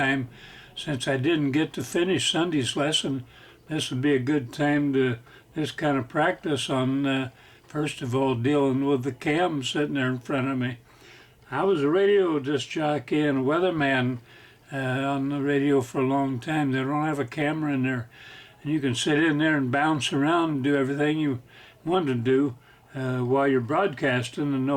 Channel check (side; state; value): both; identical; correlation 1.00